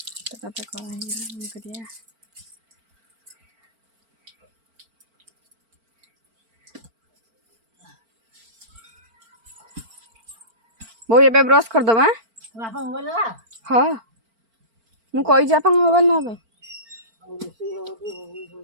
तो करिया वो ये ब्रश कर दबा हाँ मु कही आप मोबाइल ना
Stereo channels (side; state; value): left; late; 4.4 ms